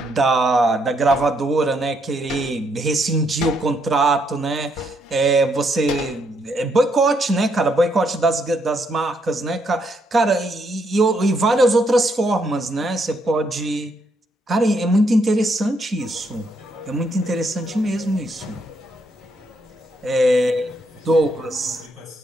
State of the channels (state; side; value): normal; both; correlation 0.75